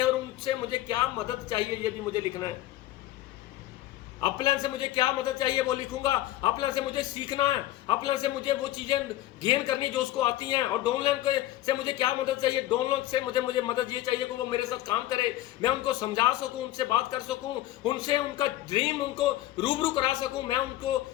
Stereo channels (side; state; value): right; quieter; 15.1 dB